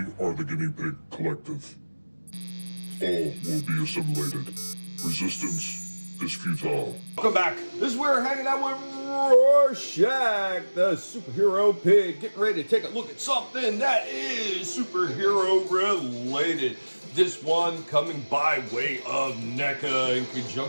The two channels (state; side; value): inverted; both; correlation -1.00